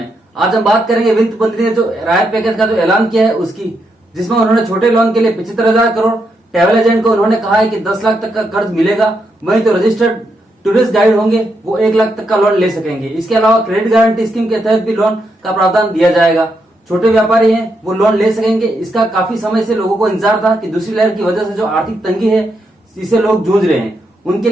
आज हम बात करेंगे वित्त मंत्री ने जो राहत पैकेज का जो ऐलान किया है उसकी, जिसमें उन्होंने छोटे लोन के लिए 75,000 करोड़, ट्रैवल एजेंट को उन्होंने कहा है कि 10 लाख तक का कर्ज मिलेगा, वहीं तो रजिस्टर्ड टूरिस्ट गाइड होंगे वो 1 लाख तक का लोन ले सकेंगे। इसके अलावा क्रेडिट गारंटी स्कीम के तहत भी लोन का प्रावधान दिया जाएगा। छोटे व्यापारी हैं वो लोन ले सकेंगे। इसका काफी समय से लोगों को इंतजार था कि दूसरी लहर की वजह से जो आर्थिक तंगी है इसे लोग जूझ रहे हैं, उनके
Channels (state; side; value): normal; both; correlation 0.81